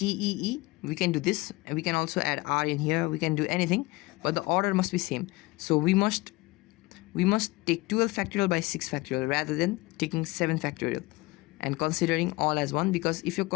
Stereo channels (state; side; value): quieter; right; 22.2 dB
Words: we can do this, and we can also add R in here, we can do anything, but the order must be same. So we must take 12 factorial by 6 factorial rather than taking 7 factorial and considering all as 1, because if you're